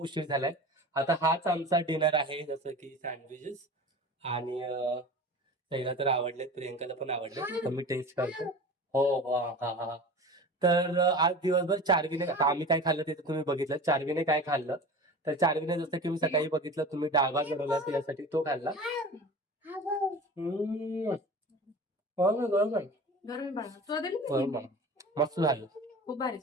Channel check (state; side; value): normal; both; correlation 0.36